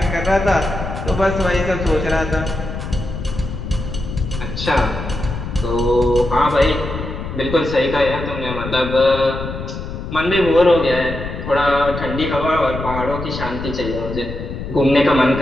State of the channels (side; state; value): left; noise; rumble, 7 dB below the sound